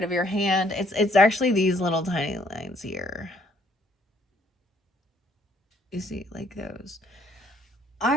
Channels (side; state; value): both; normal; correlation 0.65